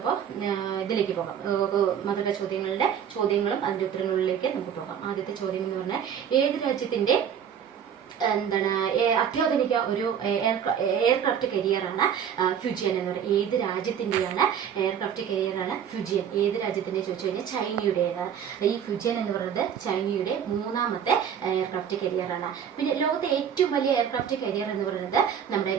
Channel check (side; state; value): left; quieter; 8.4 dB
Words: ഇതിലേക്ക് പോകാം. മധുര ചോദ്യങ്ങളും അതിന്റെ ഉത്തരങ്ങളിലേക്ക് നമുക്ക് പോകാം. ആദ്യത്തെ ചോദ്യം എന്ന് പറഞ്ഞാൽ ഏത് രാജ്യത്തിന്റെ അത്യാധുനിക ഒരു എയർക്രാഫ്റ്റ് കരിയറാണ് ഫ്യൂജിയൻ എന്ന് പറയുന്നത്? ഏത് രാജ്യത്തിന്റെയാണ് എയർക്രാഫ്റ്റ് കരിയറാണ് ഫ്യൂജിയൻ? ഏത് രാജ്യത്തിന്റെ ചോദിച്ചു കഴിഞ്ഞാൽ ചൈനയുടേതാണ്. ഈ ഫ്യൂജിയൻ എന്ന് പറയുന്നത് ചൈനയുടെ മൂന്നാമത്തെ എയർക്രാഫ്റ്റ് കരിയറാണ്. പിന്നെ ലോകത്തെ ഏറ്റവും വലിയ എയർക്രാഫ്റ്റ് കരിയർ എന്ന് പറയുന്നത് നമ്മുടെ